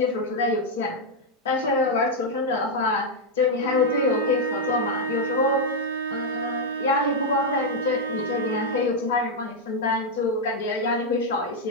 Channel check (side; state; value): both; normal; correlation -0.02